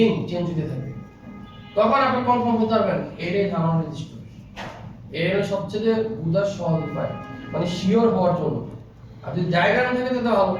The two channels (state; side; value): identical; both; correlation 1.00